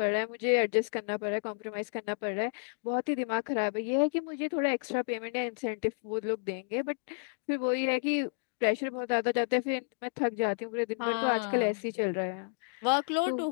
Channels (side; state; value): right; silent; digital silence